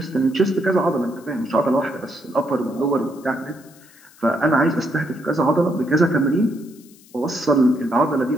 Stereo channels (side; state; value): left; noise; hiss, 26 dB below the sound